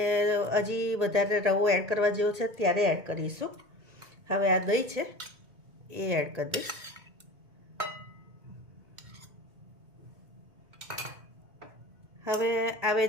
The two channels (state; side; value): late; left; 1.8 ms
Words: હજી વધારે રવો એડ કરવા જેવો છે ત્યારે એડ કરીશું. હવે આ દહીં છે એ એડ કરી દઈશ. હવે આ